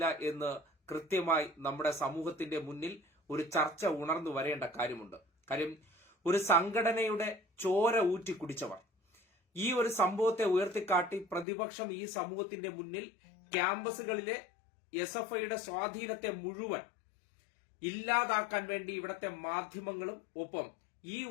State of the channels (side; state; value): right; drops out; at 11.5 s